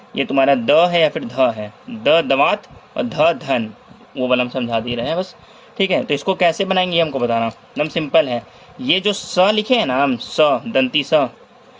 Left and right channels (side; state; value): both; identical; correlation 1.00